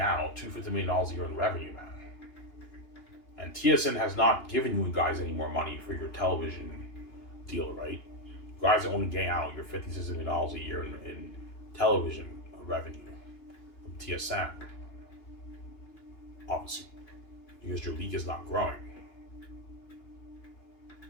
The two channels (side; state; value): right; late; 2.8 ms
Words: $250 million a year in revenue, man. And TSN has not given you guys any more money for your television deal, right? You guys are only getting out your $56 million a year in television revenue from TSN, obviously, because your league is not growing.